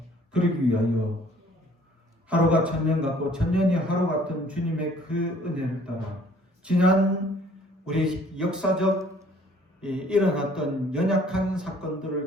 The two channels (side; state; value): both; normal; correlation 0.57